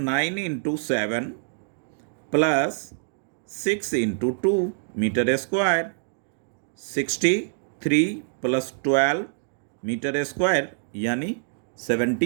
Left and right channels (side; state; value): left; silent; digital silence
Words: into 7 plus 6 into 2 metre square, 63 + 12 metre square यानी